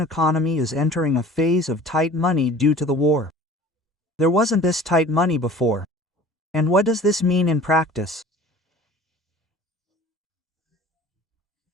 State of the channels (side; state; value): both; normal; correlation 0.45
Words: economy is entering a phase of tight money due to the war. There wasn't this tight money before. And what does this mean in practice?